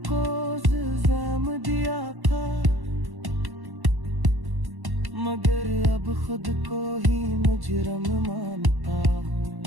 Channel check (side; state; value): left; late; 1.1 ms